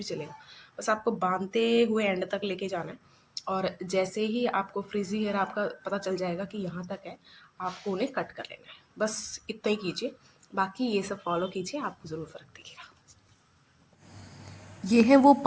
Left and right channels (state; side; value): identical; both; correlation 1.00